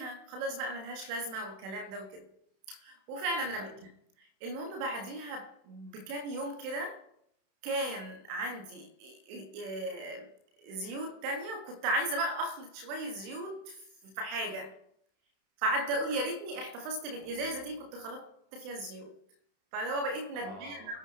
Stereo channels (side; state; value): left; late; 31 ms